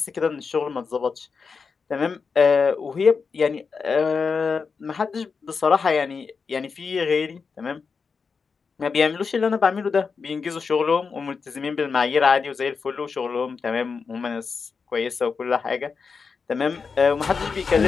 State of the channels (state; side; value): quieter; right; 5.2 dB